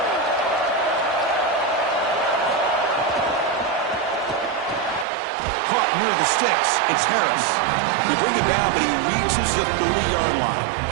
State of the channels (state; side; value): drops out; left; at 5.1 s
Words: Caught near the sticks. It's Harris. They bring it down, but he reaches the 30-yard line.